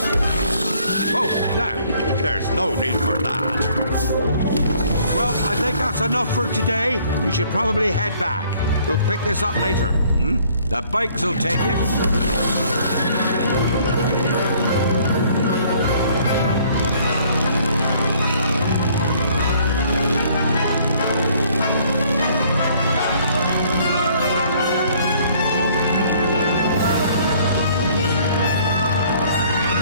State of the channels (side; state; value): both; inverted; correlation -0.60